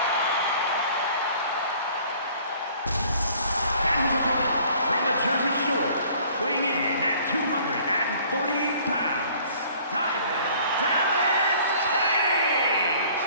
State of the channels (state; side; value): inverted; both; correlation -0.54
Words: And his opponent from the Jersey Shore, weighing in at 248 pounds, Diamond Dallas Page!